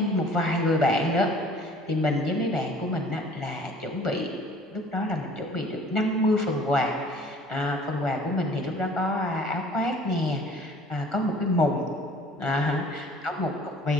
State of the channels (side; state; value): both; normal; correlation 0.51